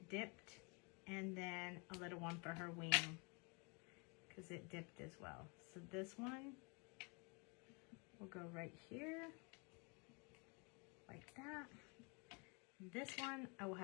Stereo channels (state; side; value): quieter; right; 32.0 dB